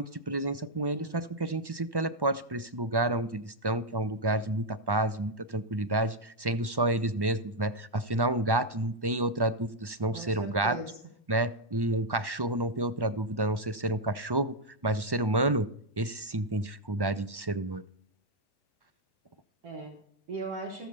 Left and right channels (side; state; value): left; late; 1.1 ms